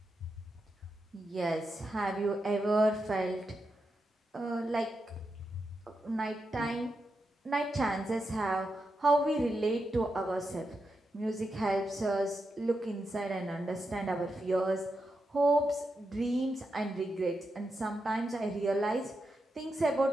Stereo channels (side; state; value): both; normal; correlation 0.86